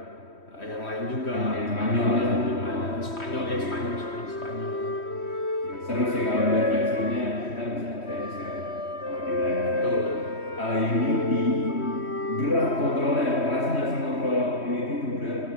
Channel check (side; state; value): right; late; 3.1 ms